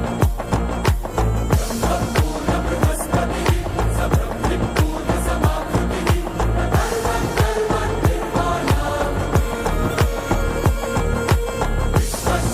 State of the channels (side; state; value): both; identical; correlation 1.00